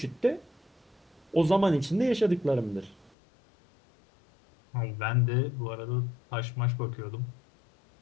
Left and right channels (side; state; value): right; drops out; at 3.1 s